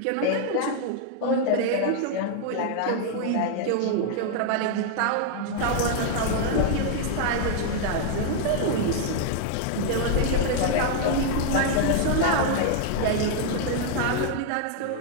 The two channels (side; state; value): both; different; correlation 0.00